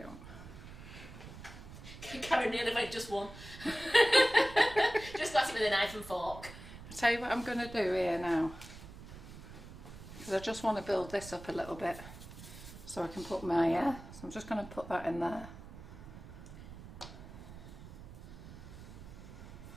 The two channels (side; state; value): right; noise; rumble, 14 dB below the sound